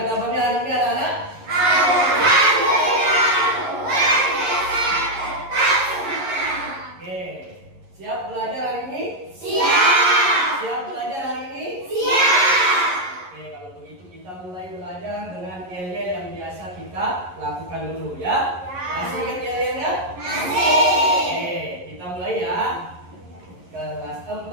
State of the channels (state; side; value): late; left; 11 ms